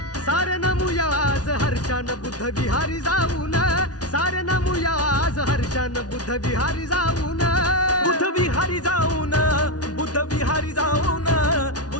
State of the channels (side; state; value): right; late; 0.69 ms